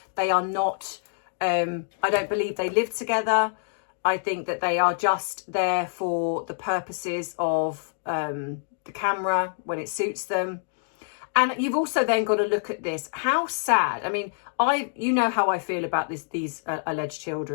they are not, I don't believe they live together. I think that they are just there for the purposes of the camera when it suits them. And you've also then got to look at this. How sad. I mean, you know how I feel about these alleged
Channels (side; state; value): right; silent; digital silence